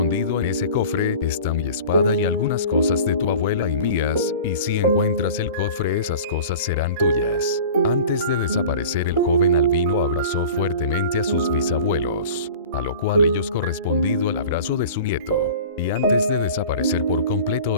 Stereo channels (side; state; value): both; inverted; correlation -0.40